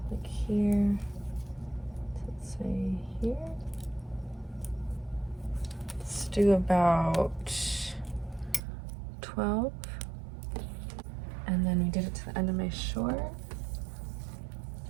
like here, let's say here. Let's do about 12. And then we did it to the end of my short.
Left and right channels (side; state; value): left; drops out; at 8.6 s